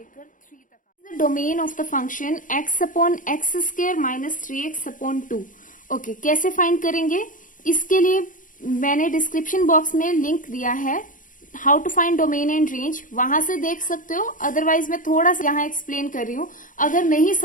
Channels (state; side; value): late; right; 0.38 ms